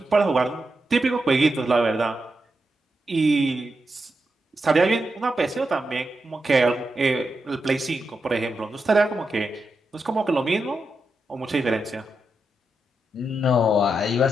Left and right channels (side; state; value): both; normal; correlation 0.86